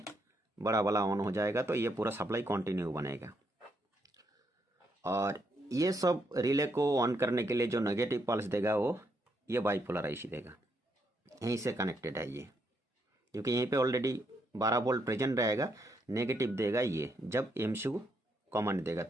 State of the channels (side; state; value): both; normal; correlation 0.77